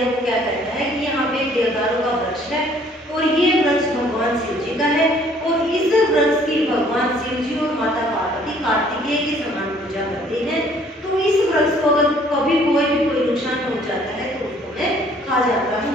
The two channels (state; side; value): normal; both; correlation 0.59